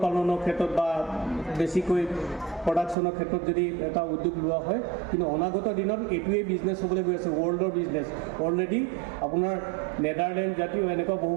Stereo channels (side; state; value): left; drops out; at 3.0 s